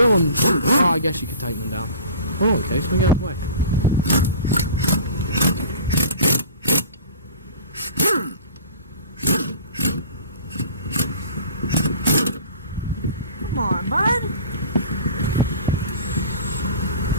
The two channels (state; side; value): inverted; both; correlation -0.42